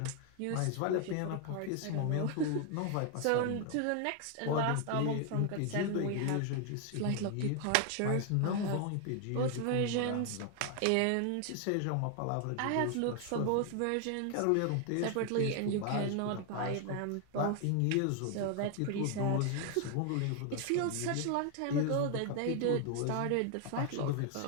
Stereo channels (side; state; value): both; different; correlation 0.00